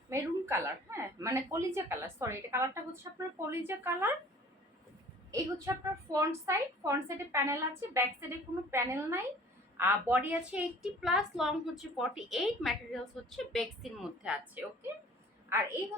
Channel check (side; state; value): both; normal; correlation 0.49